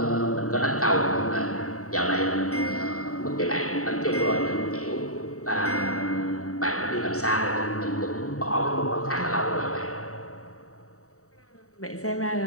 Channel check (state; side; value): late; right; 0.65 ms